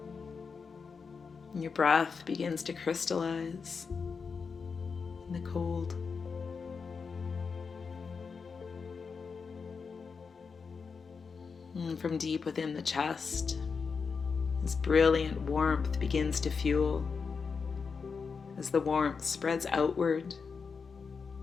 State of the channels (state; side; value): quieter; right; 5.4 dB